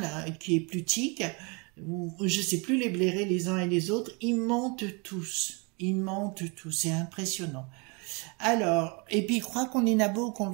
qui est plutique, je sais plus les blairer les uns et les autres, ils montent tous. Ils montent tous, c'est impressionnant. Alors, et puis ils croient qu'on est nabo, qu'on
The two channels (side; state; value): left; quieter; 30.9 dB